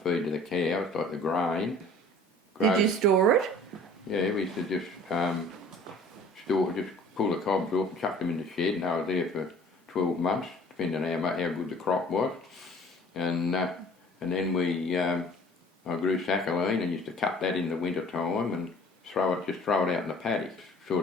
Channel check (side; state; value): both; normal; correlation 0.49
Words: feed to the cows, like the grain. Did you store it? Yeah, we used to just pull the cobs off and chuck them in the shed, and I was there for 12 months, depending on how good the crop was. And then I grew saccharine and used to cut that in the winter time and throw it out in the paddock.